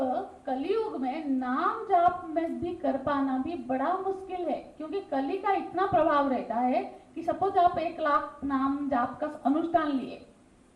कलयुग में नाम जाप में भी कर पाना भी बड़ा मुश्किल है, क्योंकि कली का इतना प्रभाव रहता है कि सपोज आप 1,00,000 नाम जाप का अनुष्ठान लिए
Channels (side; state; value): both; identical; correlation 1.00